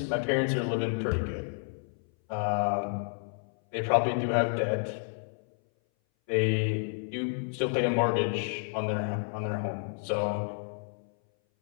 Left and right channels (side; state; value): right; silent; 58 dB below the other